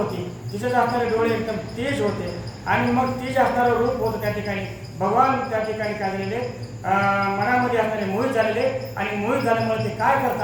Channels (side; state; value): both; identical; correlation 1.00